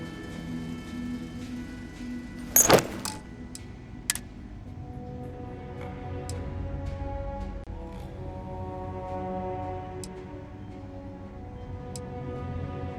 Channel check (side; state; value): both; identical; correlation 1.00